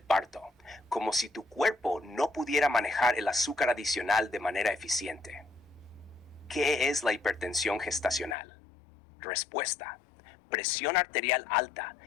parto, como si tu cuerpo no pudiera manejar el azúcar adicional de manera eficiente. ¿Qué es la hipertensión gestacional? Respuesta. Presión arterial alta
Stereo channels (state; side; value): drops out; right; at 8.3 s